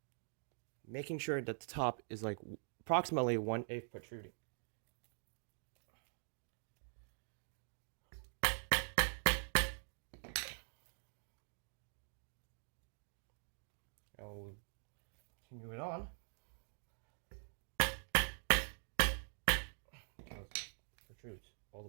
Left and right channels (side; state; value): left; silent; digital silence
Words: Making sure that the top is like approximately 1/8 protruding. I'll continue it on. It protrudes all